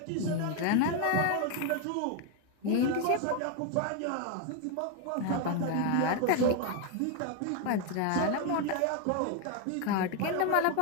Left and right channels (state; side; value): different; both; correlation 0.01